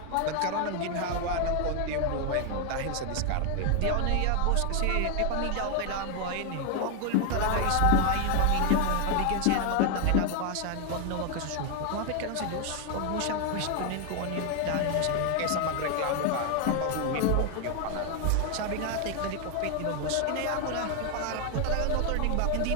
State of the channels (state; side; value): different; both; correlation 0.01